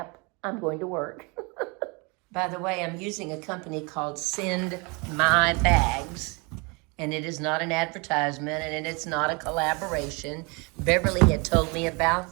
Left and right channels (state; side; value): quieter; left; 29.7 dB